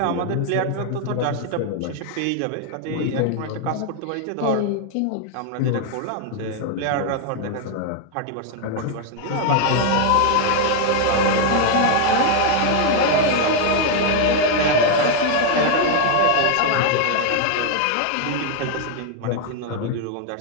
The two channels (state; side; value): different; both; correlation 0.00